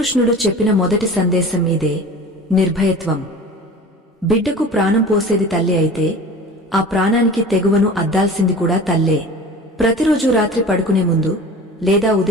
చెప్పిన మొదటి సందేశం మీదే, నిర్భయత్వం. బిడ్డకు ప్రాణం పోసేది తల్లి అయితే ఆ ప్రాణానికి తెగువను అద్దాల్సింది కూడా తల్లే. ప్రతిరోజు రాత్రి పడుకునే ముందు లేదా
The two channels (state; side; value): normal; both; correlation 0.38